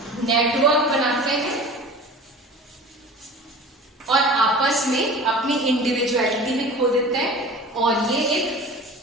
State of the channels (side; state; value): both; normal; correlation 0.39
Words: network बनाते हैं और आपस में अपनी इंडिविजुअलिटी में खो देते हैं, और ये एक